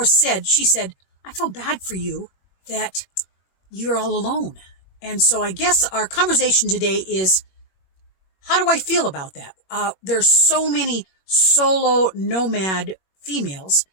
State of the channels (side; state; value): right; late; 21 ms